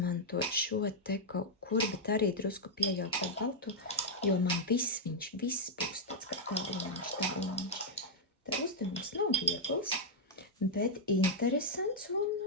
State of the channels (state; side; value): normal; both; correlation -0.05